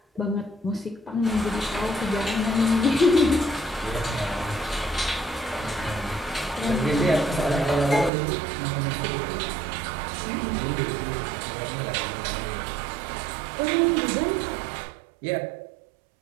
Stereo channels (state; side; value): drops out; left; at 8.1 s